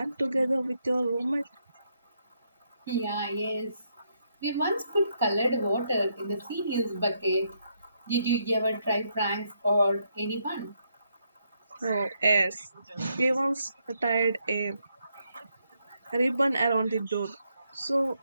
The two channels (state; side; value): inverted; both; correlation -0.77